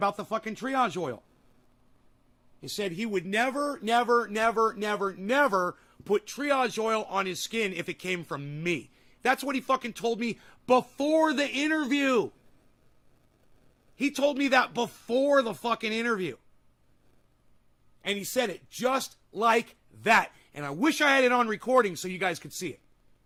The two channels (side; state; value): both; identical; correlation 1.00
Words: the fucking triage oil. He said he would never, never, never, never, never put triage oil on his skin if it came from me. That's what he fucking told me before the interview. He told me that before the fucking interview. And he said it just like that. And I wish I had it on recording so you guys could see it.